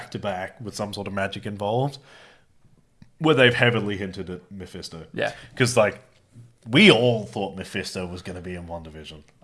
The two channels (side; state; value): both; identical; correlation 1.00